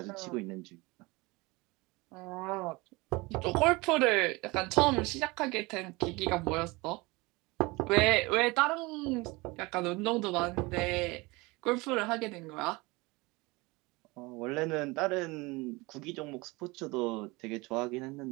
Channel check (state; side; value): quieter; left; 24.1 dB